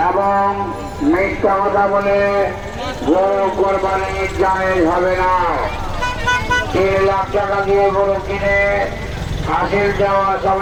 এবং মিথ্যা কথা বলে গরু কোরবানি জায়েজ হবে না। 3 লাখ টাকা দিয়ে গরু কিনে হাসিল দেওয়ার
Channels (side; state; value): both; identical; correlation 1.00